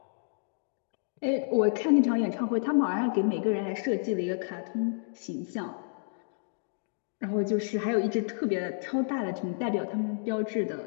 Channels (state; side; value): silent; right; digital silence